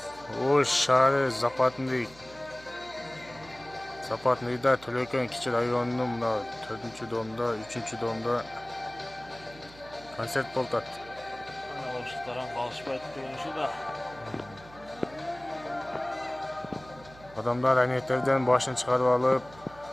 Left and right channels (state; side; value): noise; right; hum, 21 dB below the sound